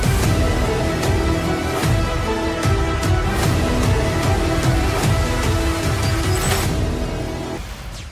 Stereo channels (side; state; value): both; identical; correlation 1.00